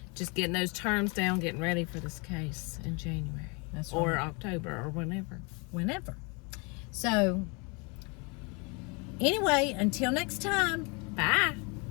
just getting those terms down, getting ready for this case in January. That's or right. October or whenever. So, anyway, until next time. Bye.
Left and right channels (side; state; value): right; quieter; 31.3 dB